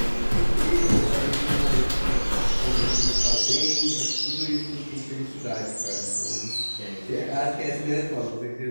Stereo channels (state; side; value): inverted; both; correlation -1.00